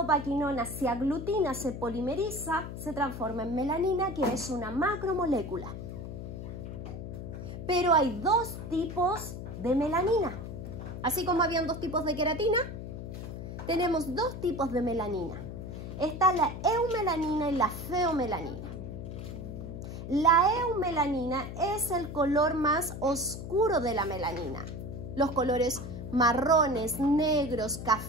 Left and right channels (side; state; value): left; noise; hum, 8 dB below the sound